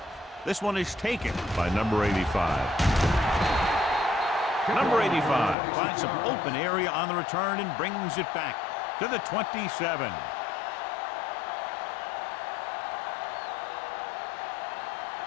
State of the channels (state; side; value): drops out; right; at 5.6 s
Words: This one is taken by number 85. Number 85 finds some open area on the return and brings it back to the 27.